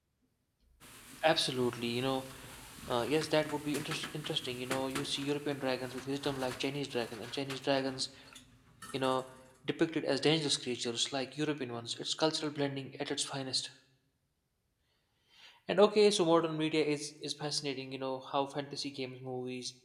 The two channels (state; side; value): identical; both; correlation 1.00